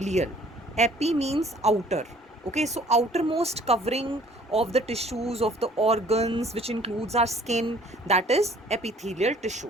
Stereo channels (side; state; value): both; normal; correlation 0.56